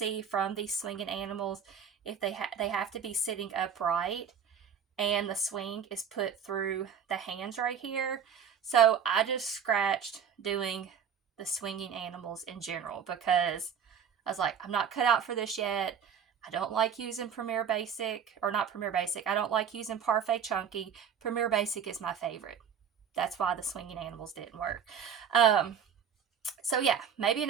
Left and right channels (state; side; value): quieter; left; 7.6 dB